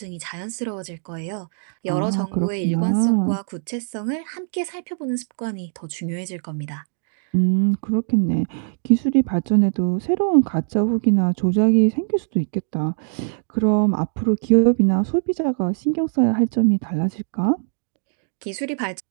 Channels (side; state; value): left; silent; digital silence